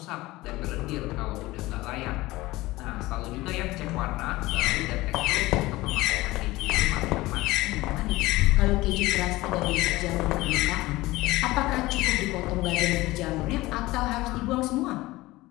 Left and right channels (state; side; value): quieter; right; 19.2 dB